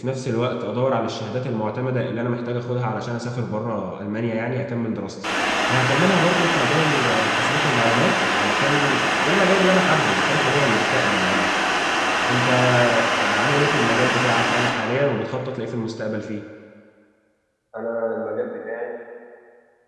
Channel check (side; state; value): both; identical; correlation 1.00